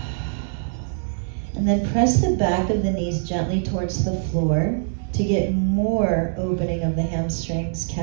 And then press the back of the knees gently towards the floor to get more opening of the hamstrings,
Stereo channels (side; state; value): left; silent; 62 dB below the other